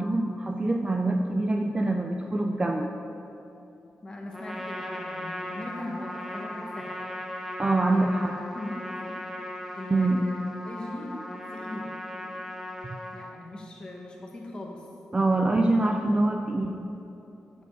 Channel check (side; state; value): both; normal; correlation 0.93